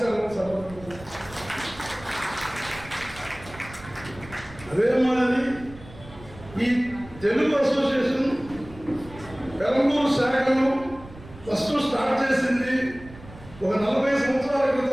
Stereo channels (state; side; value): noise; right; rumble, 18 dB below the sound